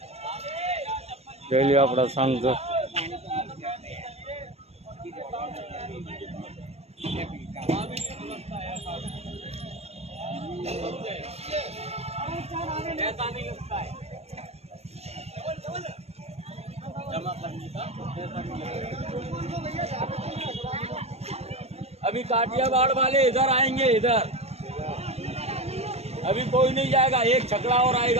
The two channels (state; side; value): late; left; 0.30 ms